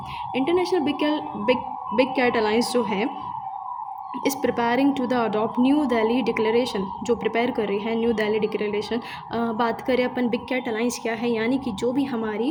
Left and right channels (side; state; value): both; identical; correlation 1.00